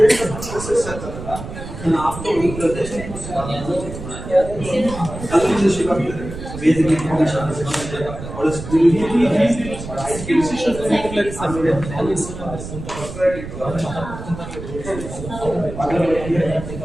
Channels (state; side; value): noise; right; rumble, 10 dB below the sound